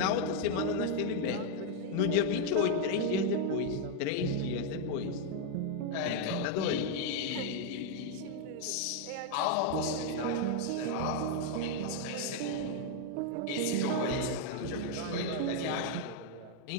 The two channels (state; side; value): different; both; correlation 0.00